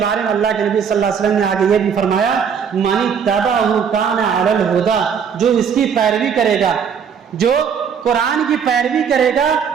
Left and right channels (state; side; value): quieter; left; 7.1 dB